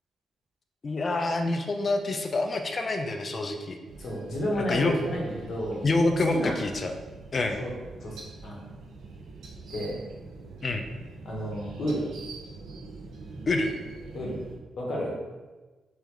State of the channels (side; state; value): both; normal; correlation 0.86